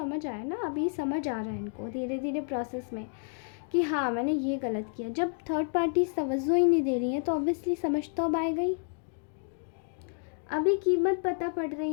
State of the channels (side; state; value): right; silent; 58 dB below the other